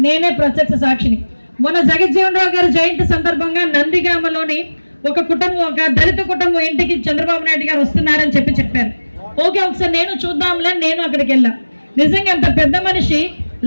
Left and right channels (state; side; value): inverted; both; correlation -1.00